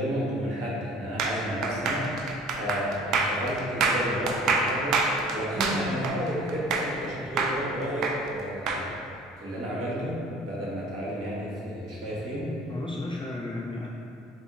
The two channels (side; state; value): both; normal; correlation 0.49